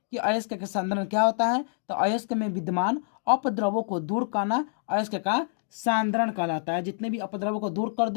अयस्क के सांद्रण क्या होता है। तो अयस्क में विद्यमान अपद्रव्यों को दूर करना अयस्क का सांद्रण कहलाता है। जितने भी अपद्रव्यों को दूर कर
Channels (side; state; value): right; silent; digital silence